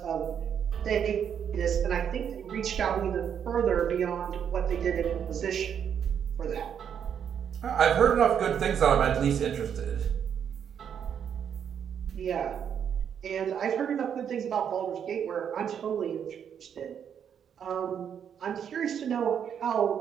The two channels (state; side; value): quieter; left; 8.3 dB